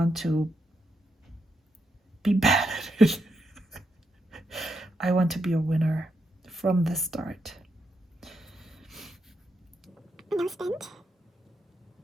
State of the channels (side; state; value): both; normal; correlation 0.82